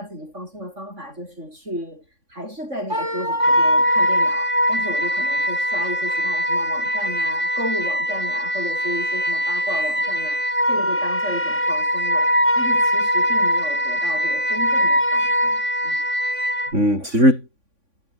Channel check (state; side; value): late; left; 3.5 ms